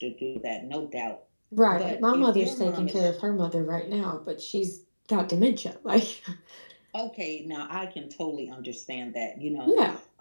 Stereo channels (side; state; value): both; inverted; correlation -1.00